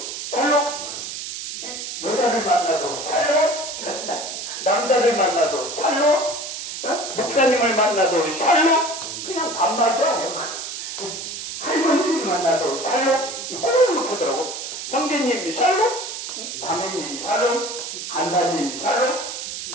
샬롬. 여자를 만나도 샬롬. 남자를 만나도 샬롬. 목사님을 만나도 샬롬. 그냥 반말도 안 해요. 할머니를 만나도 샬롬. 꼭 이렇게 하더라고. 형제님 샬롬. 자매님 샬롬. 간사님 샬롬.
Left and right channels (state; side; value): noise; right; hiss, 7 dB below the sound